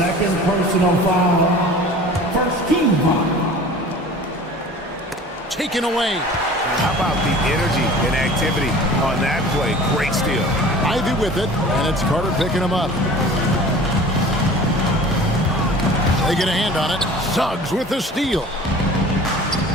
personal foul. First team foul. Taken away. How about the energy and activity on that play? Great steal. Ivy with it, and it's Carter picking him up. They get a hand on it. Suggs with the steal.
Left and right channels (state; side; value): normal; both; correlation 0.42